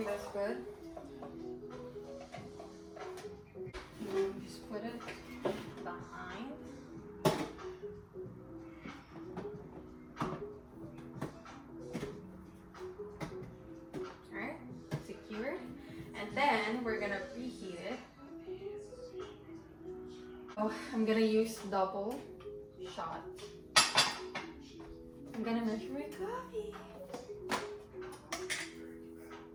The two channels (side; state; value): both; identical; correlation 1.00